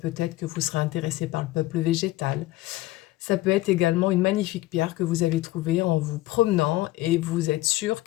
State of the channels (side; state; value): right; quieter; 17.6 dB